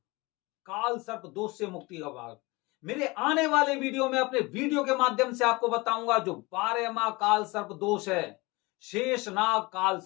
काल सर्प दोष से मुक्ति का मार्ग। मेरे आने वाले वीडियो में अपने वीडियो के माध्यम से आपको बताऊंगा जो 12वां काल सर्प दोष है, शेषनाग काल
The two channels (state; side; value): quieter; right; 23.9 dB